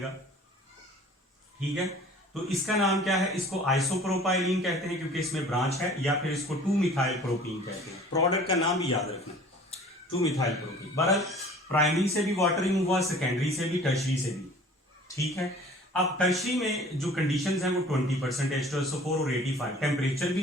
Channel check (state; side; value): normal; both; correlation 0.48